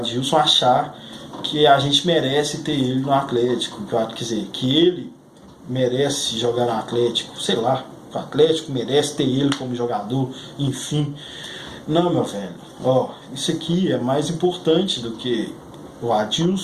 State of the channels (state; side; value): identical; both; correlation 1.00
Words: achar que a gente merece ter ele no Atlético, quer dizer, que ele merece jogar no Atlético, sei lá, o Atlético merece ter ele como jogador, enfim. Não, meu velho, isso aqui é mais importante do que o